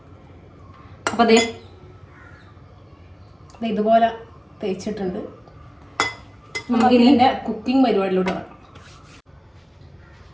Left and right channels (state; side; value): identical; both; correlation 1.00